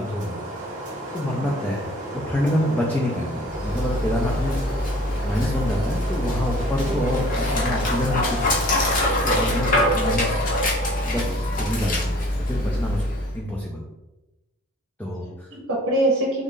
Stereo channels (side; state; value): both; normal; correlation 0.51